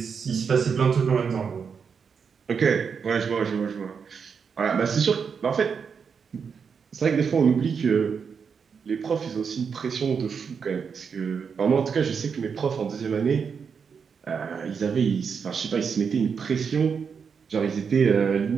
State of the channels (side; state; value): left; quieter; 6.2 dB